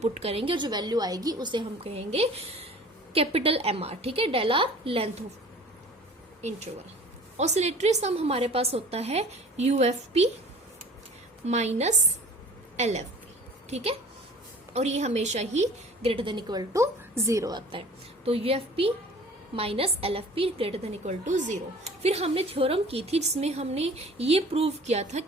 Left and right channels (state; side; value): normal; both; correlation 0.46